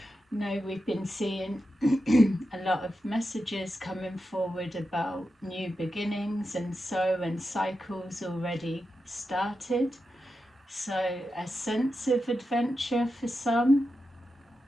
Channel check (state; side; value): normal; both; correlation 0.89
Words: No, we've been seeing a lot of messages coming forward about new beginnings and cycles already started. So a sense of adventure for some.